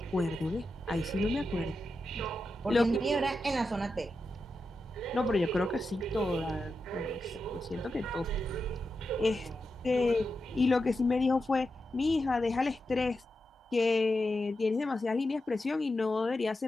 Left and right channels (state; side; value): normal; both; correlation 0.89